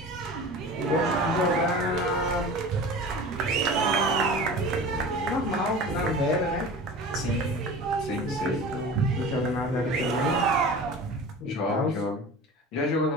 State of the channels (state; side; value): normal; both; correlation 0.36